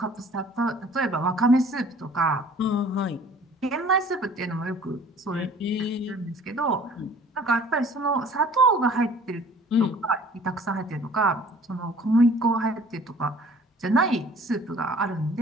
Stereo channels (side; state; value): both; normal; correlation 0.51